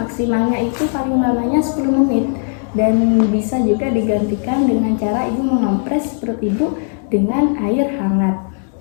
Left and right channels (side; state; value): right; silent; 60 dB below the other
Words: itu paling lamanya 10 menit, dan bisa juga digantikan dengan cara Ibu mengompres perut Ibu dengan air hangat.